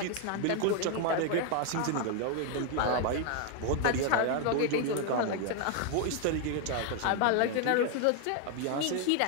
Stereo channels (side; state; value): both; different; correlation 0.01